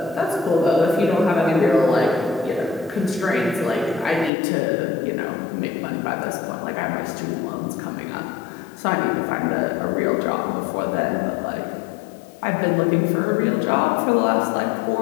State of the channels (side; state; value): right; drops out; at 4.3 s